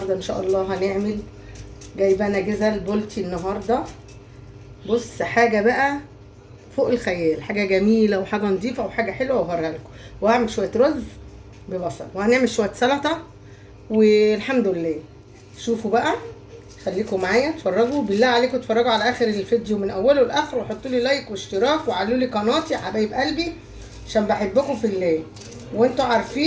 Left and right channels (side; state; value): both; identical; correlation 1.00